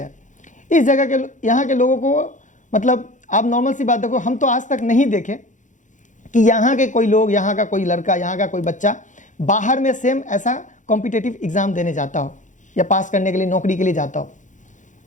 इस जगह के यहाँ के लोगों को मतलब आप नॉर्मल सी बात देखो, हम तो आज तक नहीं देखे कि यहाँ के कोई लोग, यहाँ का कोई लड़का, यहाँ का कोई बच्चा बाहर में सेम ऐसा कॉम्पिटिटिव एग्जाम देने जाता हो या पास करने के लिए नौकरी के लिए जाता हो।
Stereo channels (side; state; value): right; late; 0.36 ms